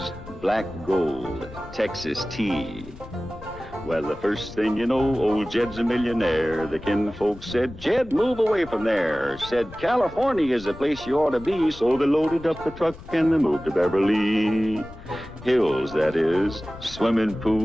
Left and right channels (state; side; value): noise; left; rumble, 16 dB below the sound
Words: black gold, Texas tea. Well, the first thing you know, old Jed's a millionaire. The kinfolk said, Jed, move away from there. Said, California is the place you ought to be. So they loaded up the truck and they moved to Beverly Hills, that is, swimming